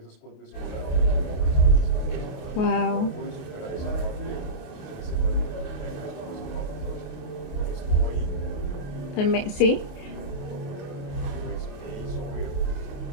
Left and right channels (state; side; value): late; right; 28 ms